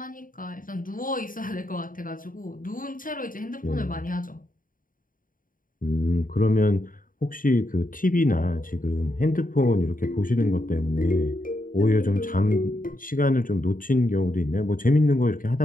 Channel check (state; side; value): late; right; 0.40 ms